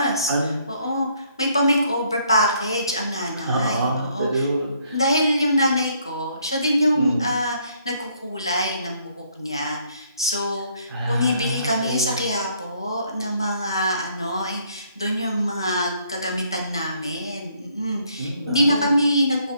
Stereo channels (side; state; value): both; inverted; correlation -0.68